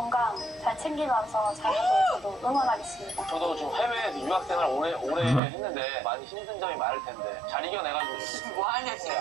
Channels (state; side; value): drops out; left; at 5.4 s